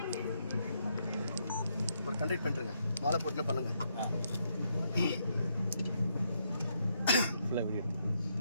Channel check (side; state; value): both; inverted; correlation -0.77